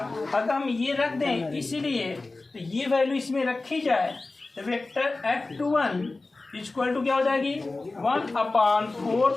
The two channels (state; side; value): quieter; right; 3.3 dB